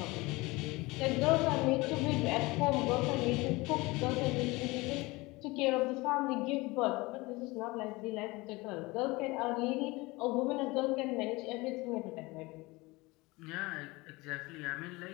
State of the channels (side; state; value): right; quieter; 22.8 dB